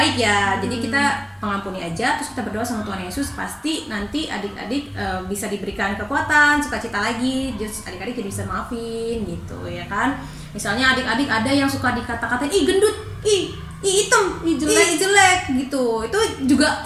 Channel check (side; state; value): both; identical; correlation 1.00